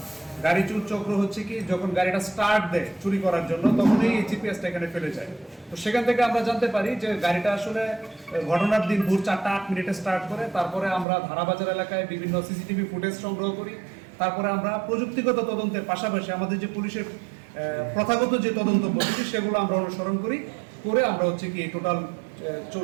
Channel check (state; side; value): drops out; left; at 11.1 s